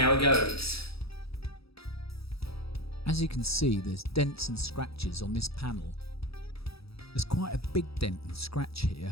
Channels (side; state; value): right; late; 0.77 ms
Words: it goes. As you can see, there's dents and scratches on this panel. There's quite a big dent and scratch here.